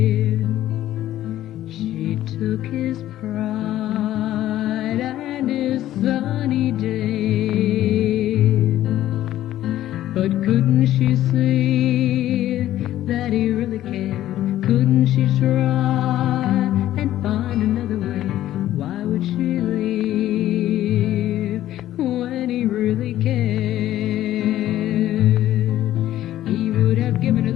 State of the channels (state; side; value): quieter; right; 13.4 dB